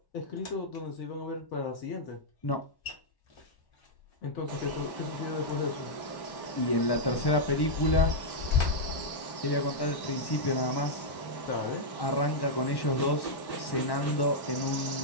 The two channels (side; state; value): right; late; 1.1 ms